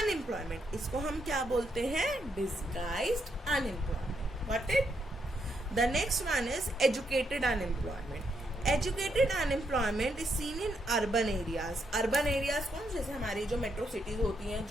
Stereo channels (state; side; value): normal; both; correlation 0.78